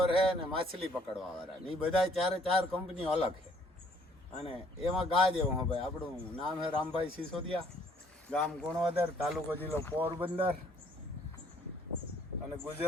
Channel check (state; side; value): normal; both; correlation 0.62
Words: હે ને માછલી પકડવા વાળા ને એ બધા 4 કંપનીઓ અલગ છે. અને એમાં ગા જેવું હે ભાઈ. આપણું નામ હે રામભાઈ સિસોદિયા, ગામ ગુણવદર, તાલુકો જિલ્લો પોરબંદર અને